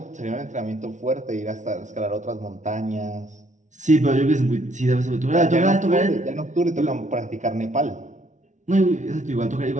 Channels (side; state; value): left; late; 0.36 ms